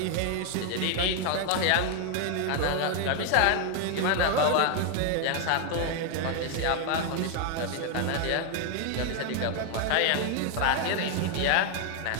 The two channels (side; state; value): both; different; correlation 0.00